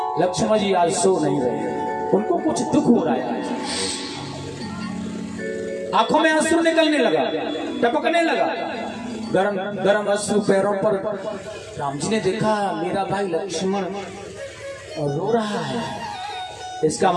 लक्ष्मण जी आज सो नहीं रहे, उनको कुछ दुख हो रहा है। आंखों में आंसू निकलने लगा, टपकने लगा, गरम गरम अश्रु पैरों पर। राम जी ने देखा मेरा भाई लक्ष्मण रो रहा है, इसका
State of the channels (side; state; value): both; identical; correlation 1.00